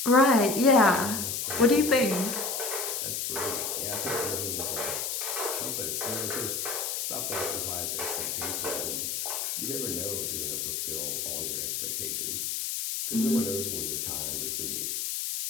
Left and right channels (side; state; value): left; noise; hiss, 2 dB below the sound